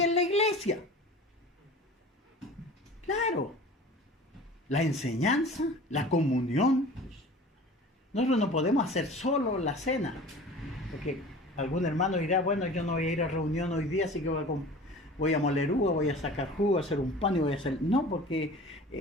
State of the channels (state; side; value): normal; both; correlation 0.41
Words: en la iglesia. Claro, la enseñanza, la comunión. Nosotros no podemos hacer solo la cena, porque algún hermano dirá: bueno, yo no voy a ir a reunión hoy día, así que voy a moler uva, voy a sacar jugo, a hacer un pan y voy a hacer... No, porque